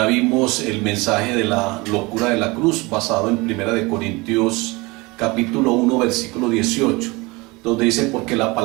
vimos el mensaje de la locura de la cruz basado en 1 Corintios capítulo 1 versículo 18, donde dice: porque la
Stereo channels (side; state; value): left; quieter; 24.2 dB